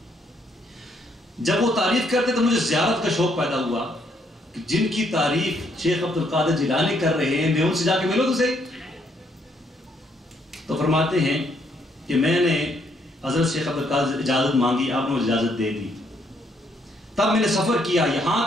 جب وہ تعریف کرتے تو مجھے زیارت کا شوق پیدا ہوا کہ جن کی تعریف شیخ عبد القادر جیلانی کر رہے ہیں میں ان سے جا کے ملوں تو صحیح۔ تو فرماتے ہیں کہ میں نے حضرت شیخ عبد القادر سے اجازت مانگی، آپ نے مجھے اجازت دے دی۔ تب میں نے سفر کیا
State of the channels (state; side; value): normal; both; correlation 0.71